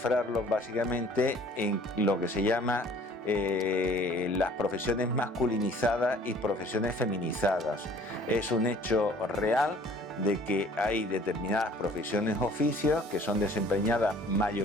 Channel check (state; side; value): normal; both; correlation 0.53